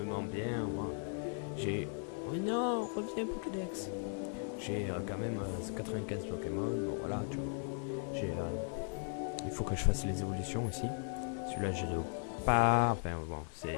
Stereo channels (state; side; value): silent; right; 53 dB below the other